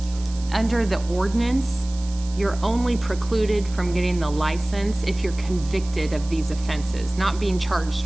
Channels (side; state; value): right; noise; hiss, 18 dB below the sound